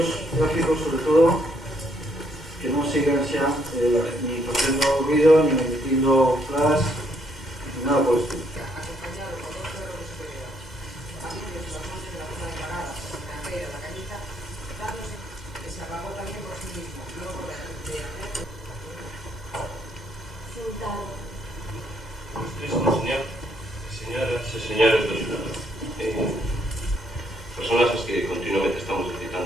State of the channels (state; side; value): normal; both; correlation 0.71